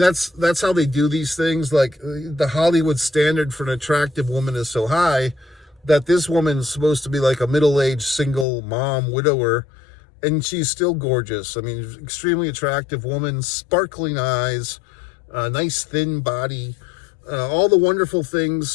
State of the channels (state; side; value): drops out; right; at 8.5 s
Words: how they do these things. Like, the Hollywood standard for an attractive woman is so high that this woman's supposed to be like a middle-aged single mom, widower, and she's still gorgeous. I mean, extremely attractive woman, sparkling eyes, nice thin body, all the wonderful